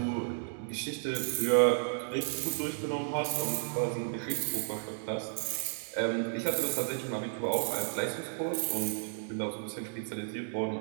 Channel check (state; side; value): silent; left; digital silence